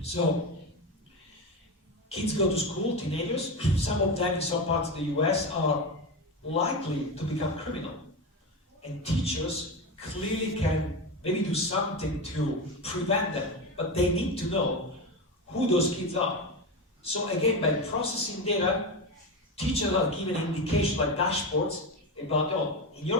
So kids go to school, teenagers, some of them in some parts of the US are likely to become criminal. And teachers clearly can maybe do something to prevent them, but they need to know who those kids are. So again, by processing data, teachers are given indications like dashboards about, oh, in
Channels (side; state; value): both; normal; correlation 0.18